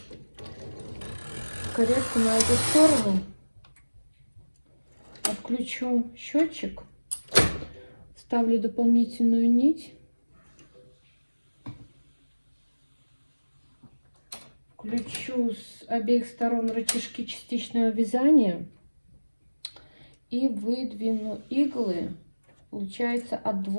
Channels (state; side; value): inverted; both; correlation -1.00